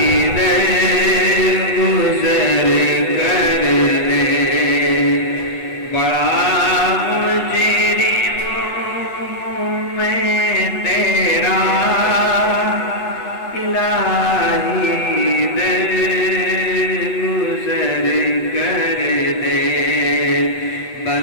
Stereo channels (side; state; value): right; late; 8.1 ms